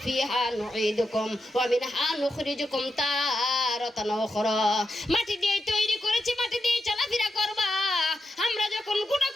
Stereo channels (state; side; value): normal; both; correlation 0.86